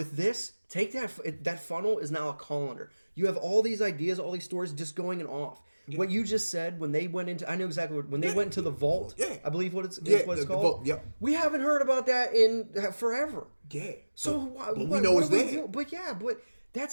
this, take that funnel is now a colander. You have all these ideas, all these stories just going and off. Yeah. What you just said when they went into, I know exactly when they went into the vault. Yeah. I believe what it's called. Vault, yeah. We haven't heard about that in forever. Yeah. So but we know it's there. But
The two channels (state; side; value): inverted; both; correlation -1.00